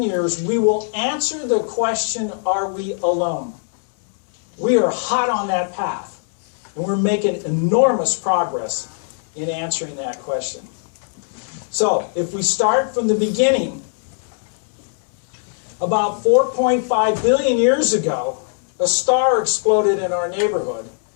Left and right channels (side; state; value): right; silent; 64 dB below the other